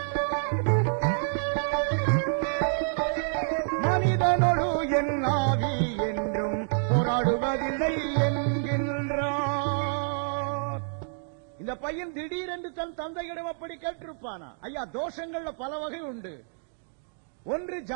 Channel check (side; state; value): left; silent; digital silence